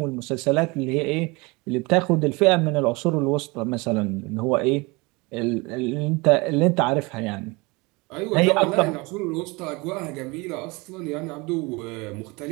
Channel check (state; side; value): quieter; left; 25.6 dB